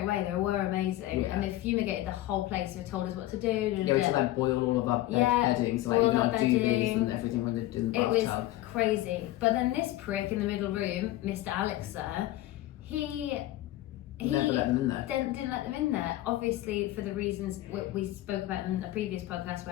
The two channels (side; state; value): right; quieter; 15.9 dB